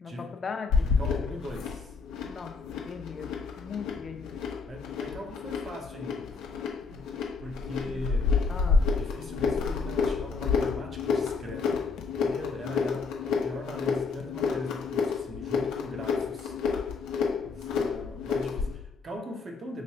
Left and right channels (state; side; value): quieter; right; 4.7 dB